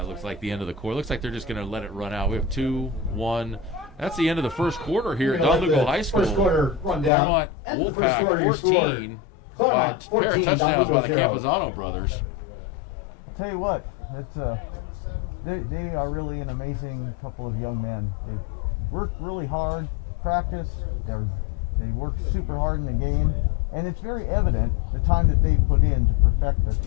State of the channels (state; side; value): drops out; right; at 7.1 s